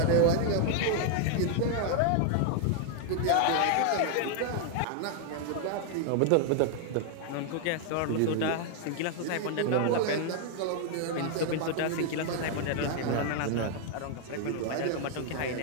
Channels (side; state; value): both; different; correlation 0.00